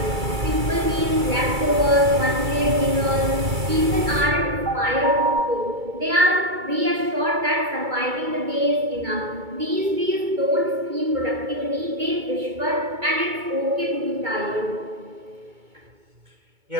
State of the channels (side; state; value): left; late; 2.3 ms